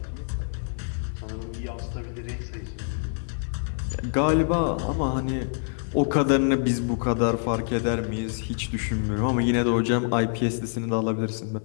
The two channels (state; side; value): silent; right; digital silence